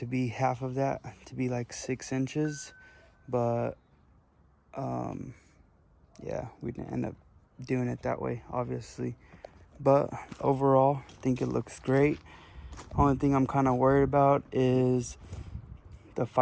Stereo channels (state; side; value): identical; both; correlation 1.00